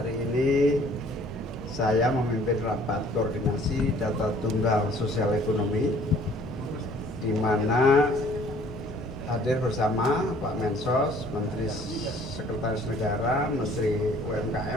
ini saya memimpin rapat koordinasi data tunggal sosial ekonomi, di mana hadir bersama Pak Mensos, Menteri Sekretaris Negara, Menteri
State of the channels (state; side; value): normal; both; correlation 0.56